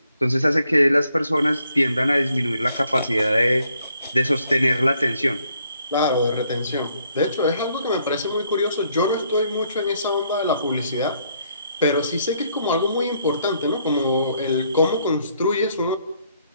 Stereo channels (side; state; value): both; inverted; correlation -0.70